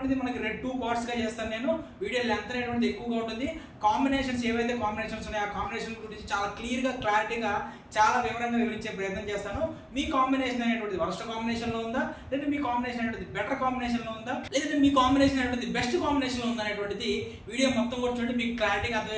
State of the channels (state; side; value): identical; both; correlation 1.00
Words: మనకి 2 పార్ట్స్గా చేస్తాను. నేను వీడియో లెంత్ అనేటువంటిది ఎక్కువగా ఉంటుంది. కాంబినేషన్స్ ఏవైతే కాంబినేషన్స్ ఉన్నాయో ఆ కాంబినేషన్ గురించి చాలా క్లారిటీగా చాలా వివరంగా వివరించే ప్రయత్నం చేస్తాను. మీ కాంబినేషన్ అనేటువంటిది వరస్ట్ కాంబినేషన్లో ఉందా, లేదా మీ కాంబినేషన్ అనేటువంటిది బెటర్ కాంబినేషన్లో ఉందా, లేదా మీ కాంబినేషన్ అనేటువంటిది బెస్ట్ కాంబినేషన్లో ఉందా అనేటువంటిది వీడియో మొత్తం కూడా చూడండి. మీకు క్లారిటీగా